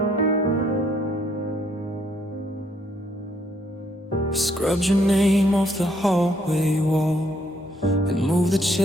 Scrubbed your name off the hallway wall and moved the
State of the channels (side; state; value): both; normal; correlation 0.69